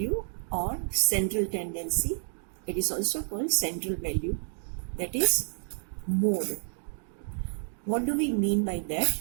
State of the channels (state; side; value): silent; left; digital silence